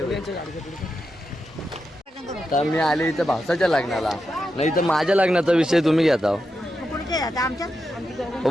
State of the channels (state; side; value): normal; both; correlation 0.87